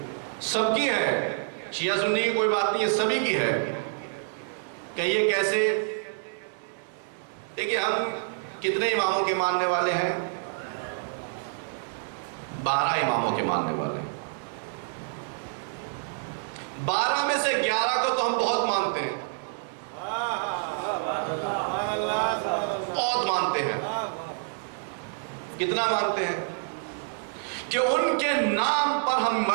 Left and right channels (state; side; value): silent; left; digital silence